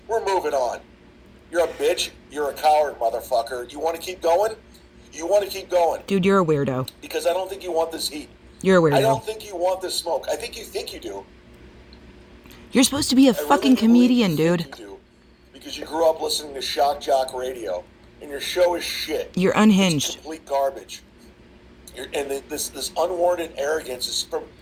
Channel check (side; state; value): both; identical; correlation 1.00